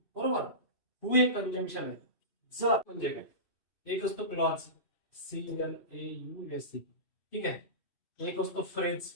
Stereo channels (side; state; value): right; late; 2.5 ms